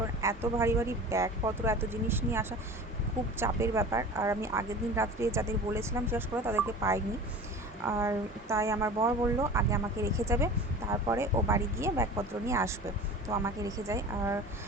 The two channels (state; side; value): normal; both; correlation 0.37